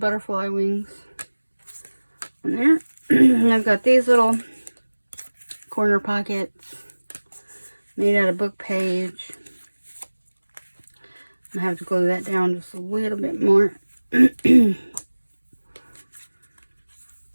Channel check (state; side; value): inverted; both; correlation -1.00